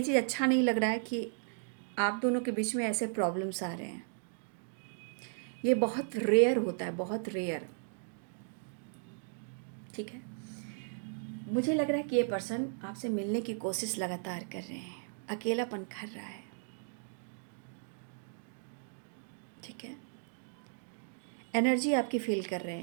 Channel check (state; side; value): silent; left; digital silence